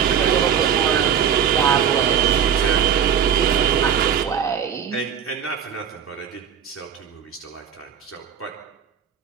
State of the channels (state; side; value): quieter; left; 8.2 dB